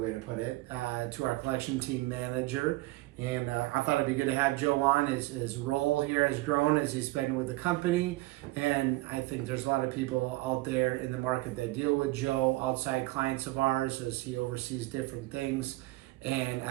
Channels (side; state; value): left; quieter; 20.2 dB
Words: to put it, to our collection team manager. And I thought it'd be good to have Joe on. His role here has grown as he's been with the company. And I think there's a lot of people out there in the market that deal with Joe, outside clients of ours, as he oversees different things. And